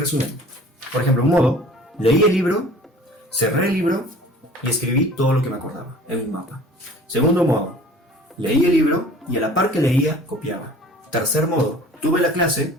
Por ejemplo, un modo, leí el libro, cerré el libro y escribí todo lo que me acordaba en un mapa. Segundo modo, leí el libro y a la par que leía, copiaba. Tercer modo, tuve la clase,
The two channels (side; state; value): both; normal; correlation 0.47